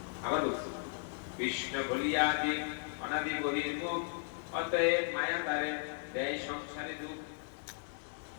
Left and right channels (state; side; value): silent; right; digital silence